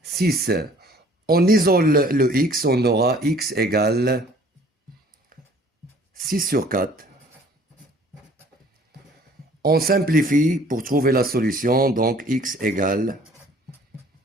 6. On isole le x, on aura x égale 6 sur 4. On simplifie pour trouver la solution, donc x égale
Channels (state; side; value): normal; both; correlation 0.54